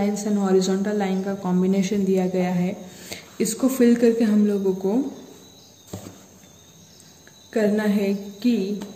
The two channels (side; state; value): both; identical; correlation 1.00